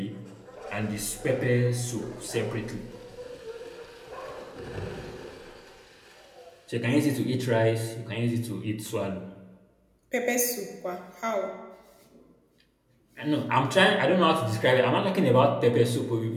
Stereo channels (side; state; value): both; identical; correlation 1.00